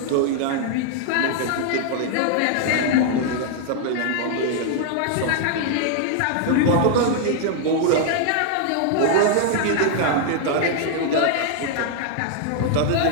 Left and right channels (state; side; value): different; both; correlation 0.00